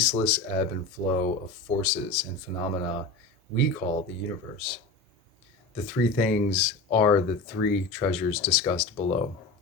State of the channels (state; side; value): quieter; right; 3.5 dB